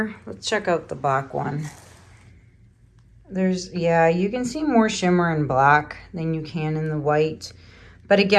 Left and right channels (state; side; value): identical; both; correlation 1.00